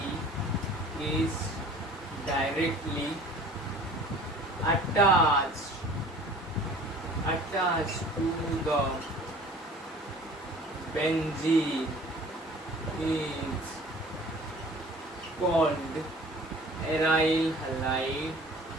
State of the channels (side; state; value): both; normal; correlation 0.47